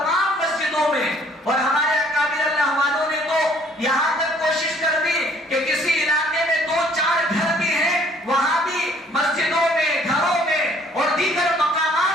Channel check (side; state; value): both; normal; correlation 0.59